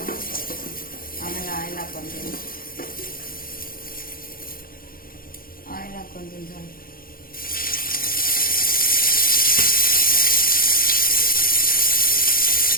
ಆಮೇಲೆ ಆಯಿಲ್ ಹಾಕ್ಕೊತೀನಿ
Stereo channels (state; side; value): late; right; 0.42 ms